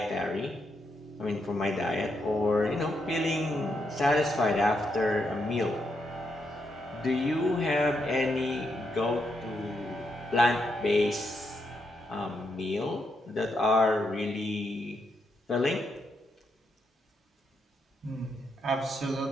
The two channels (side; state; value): both; normal; correlation 0.80